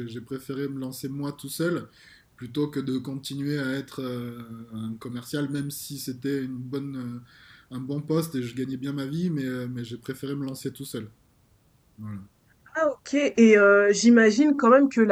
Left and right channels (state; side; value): identical; both; correlation 1.00